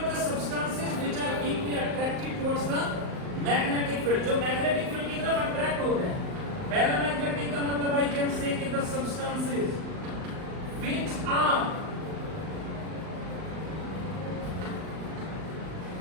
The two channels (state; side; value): late; left; 39 ms